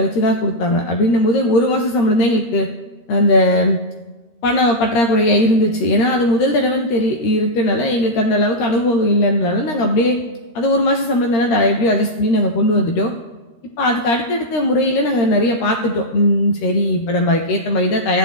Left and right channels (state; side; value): late; right; 13 ms